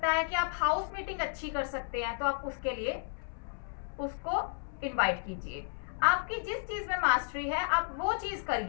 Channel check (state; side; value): silent; right; 56 dB below the other